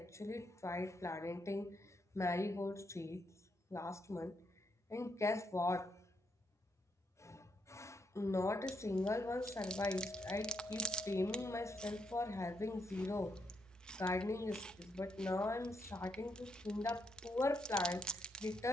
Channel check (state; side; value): normal; both; correlation 0.78